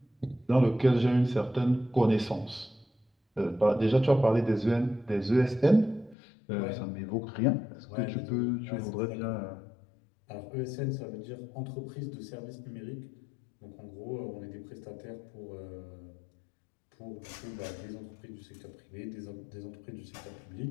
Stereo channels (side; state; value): right; drops out; at 6.2 s